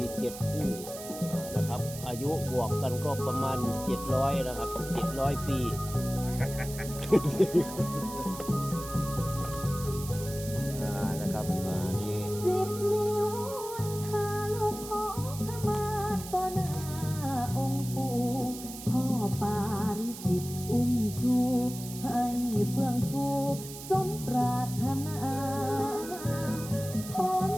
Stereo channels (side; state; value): right; noise; hiss, 12 dB below the sound